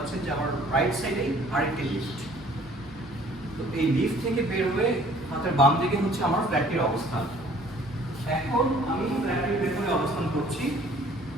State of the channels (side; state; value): both; normal; correlation 0.55